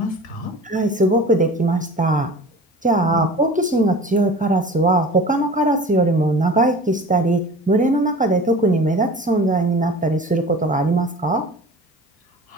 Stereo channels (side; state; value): both; normal; correlation 0.39